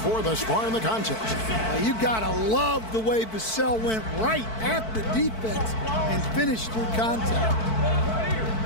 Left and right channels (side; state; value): right; late; 4.5 ms